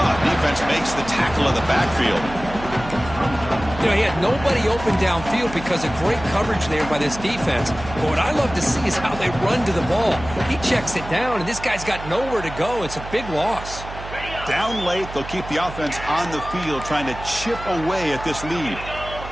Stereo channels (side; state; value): right; noise; hum, 12 dB below the sound